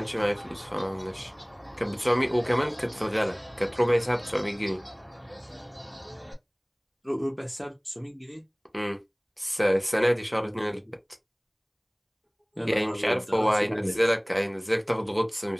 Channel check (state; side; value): identical; both; correlation 1.00